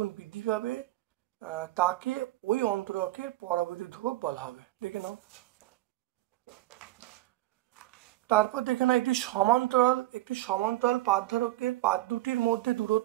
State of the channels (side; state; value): left; quieter; 16.9 dB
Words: বৃদ্ধি পাবে তাকে ওই অন্তরকের পরাবৈদ্যুতিক ধ্রুবক বলা হবে। দেখে নাও, তারপর দেখে নাও, একটি সমান্তরাল পাত ধারকের পাত দুটির মধ্যে